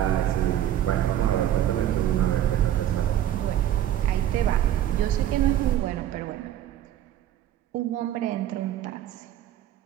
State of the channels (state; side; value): quieter; left; 11.6 dB